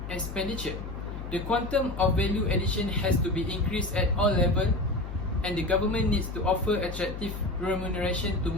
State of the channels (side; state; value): left; noise; hum, 8 dB below the sound